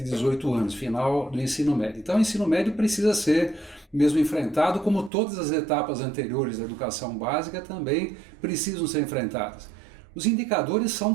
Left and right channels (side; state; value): left; drops out; at 5.1 s